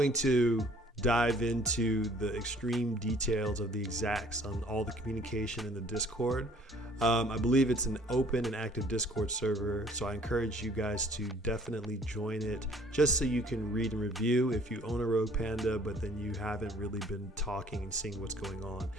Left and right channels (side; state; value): both; normal; correlation 0.57